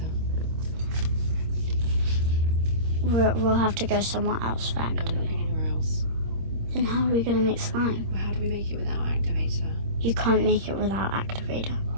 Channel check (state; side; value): late; left; 26 ms